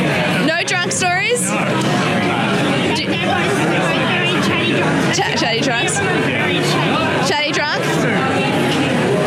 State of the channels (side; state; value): both; identical; correlation 1.00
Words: No drunk stories? Chatty drunks? Chatty drunk?